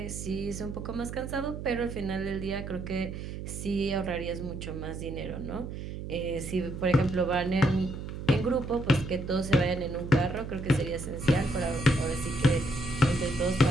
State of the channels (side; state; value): right; noise; hum, 8 dB below the sound